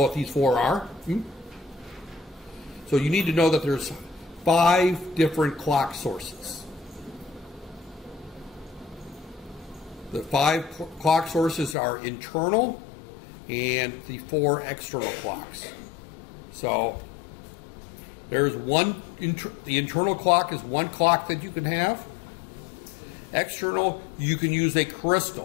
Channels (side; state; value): right; drops out; at 11.8 s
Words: what these 4 are. So you need to know that there's 5 different clock sources. The 5 clock sources are internal and the 4 external clocks. So there's one, the internal clock is 1 clock that you can have. External, you can use a